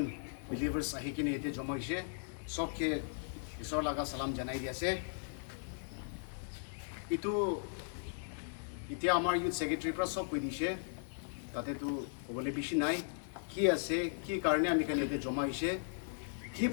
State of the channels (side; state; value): right; silent; 53 dB below the other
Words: believers आही किने एते जमा होइसे सबके ईश्वर लगा सलाम जनाई दिया से इतु इतिया आमार यूथ सेक्रेटरी पर सब कइ दिसे ताते तो कबले बेसि नाइ कि आसे कि कारणे आमी खाने एते जमा होइसे कि